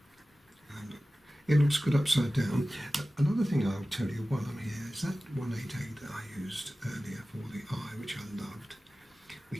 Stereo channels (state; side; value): normal; both; correlation 0.96